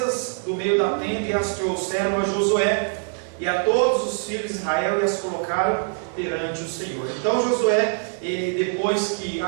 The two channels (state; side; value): silent; left; 63 dB below the other